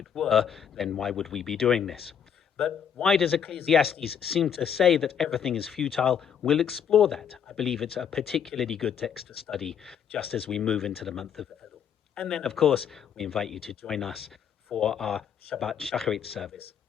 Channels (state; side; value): quieter; right; 8.1 dB